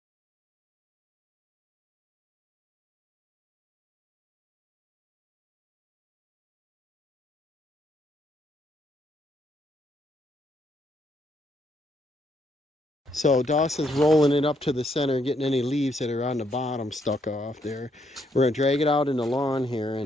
So Dawson's rolling it up to the center, getting any leaves that are on the bottom stuck off there. We're going to drag it out in the lawn here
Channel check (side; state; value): both; normal; correlation 0.74